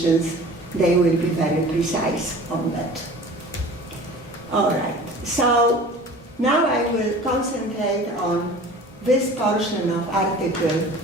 They will be very precise on that. All right, so now I will concentrate on this portion of Article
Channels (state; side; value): normal; both; correlation 0.42